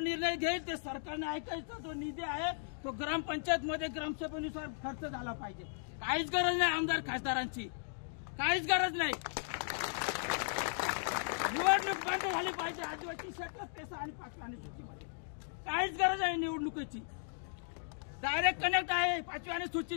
घेईल ते सरकारने ऐकायचा. जो निधी आहे तो ग्रामपंचायत मध्ये ग्रामसभेनुसार खर्च झाला पाहिजे. काहीच गरज नाही आमदार खासदारांची, काहीच गरज नाही. निवडणूक बंद झाली पाहिजे आदिवासी क्षेत्रात पेसा आणि 5व्या अनुसूचीमध्ये. काहीच गरज आहे निवडणुकीची. डायरेक्ट कनेक्ट आहे 5व्या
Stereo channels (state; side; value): silent; right; digital silence